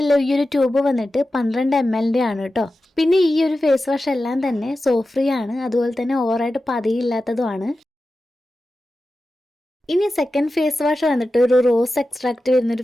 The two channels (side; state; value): both; normal; correlation 0.93